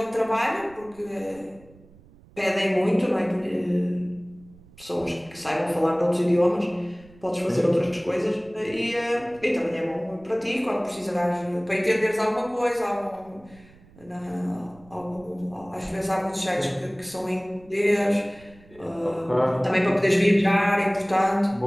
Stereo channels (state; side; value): noise; right; rumble, 25 dB below the sound